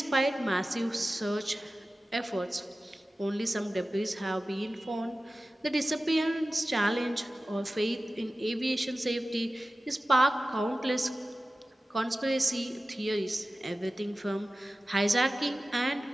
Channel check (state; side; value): normal; both; correlation 0.95